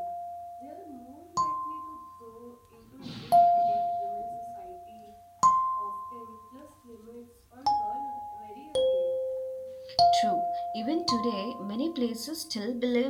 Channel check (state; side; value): identical; both; correlation 1.00